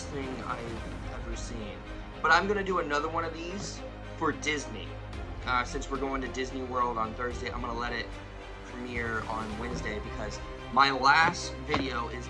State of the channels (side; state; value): both; identical; correlation 1.00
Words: thing I've ever seen. But I'm gonna do another one of these for Disney. Since we're going to Disney World on Thursday, I'm gonna let it premiere on Wednesday because my last video is